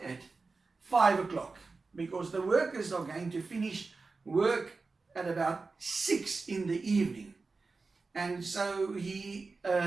at 5 o'clock, because the workers are going to finish work at about 6 in the evening. And so he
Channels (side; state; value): left; quieter; 4.0 dB